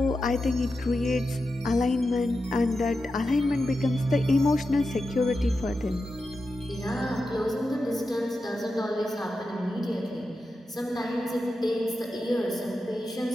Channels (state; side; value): normal; both; correlation 0.90